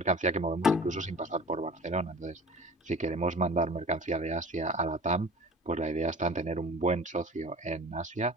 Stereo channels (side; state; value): both; normal; correlation 0.40